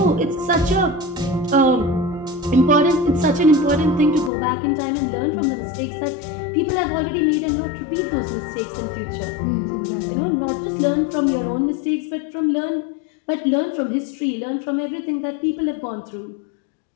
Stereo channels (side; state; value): right; drops out; at 4.3 s